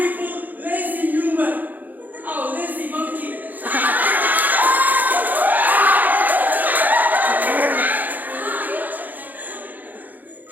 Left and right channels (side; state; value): left; late; 0.083 ms